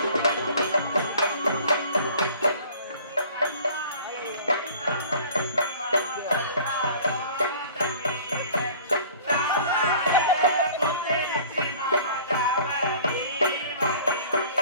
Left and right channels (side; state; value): both; inverted; correlation -0.48